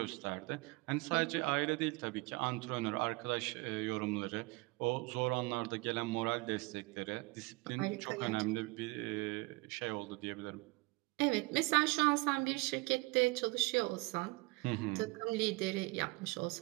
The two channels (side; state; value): left; quieter; 25.0 dB